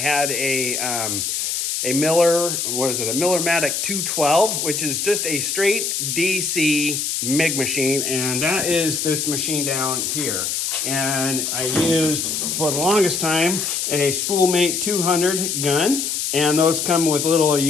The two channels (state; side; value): noise; left; hiss, 1 dB below the sound